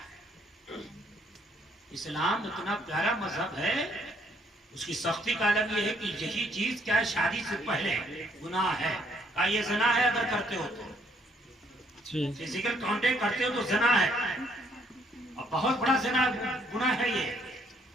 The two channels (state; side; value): normal; both; correlation 0.68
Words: इस्लाम इतना प्यारा मजहब है, उसकी सख्ती का अलग ये है कि यही चीज क्या है, शादी से पहले गुनाह है। का ये ज़ना है अगर करते हो तो, फिजिकल कांटेक्ट करते हो तो ज़ना है, और बहुत बड़ा ज़ना गुनाह है ये।